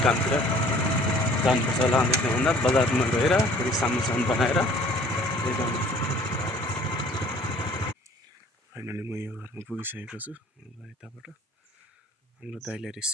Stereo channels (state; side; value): normal; both; correlation 0.53